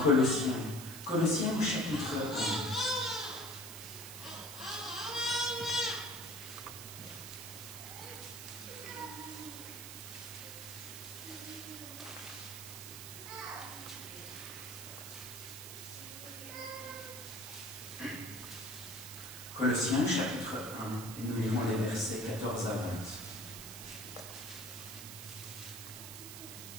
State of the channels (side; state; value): right; noise; hiss, 10 dB below the sound